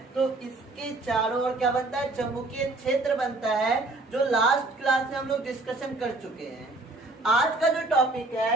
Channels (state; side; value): quieter; left; 3.0 dB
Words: तो इसके चारों ओर क्या बनता है, चुंबकीय क्षेत्र बनता है, जो लास्ट क्लास में हम लोग डिस्कशन कर चुके हैं। आज का जो टॉपिक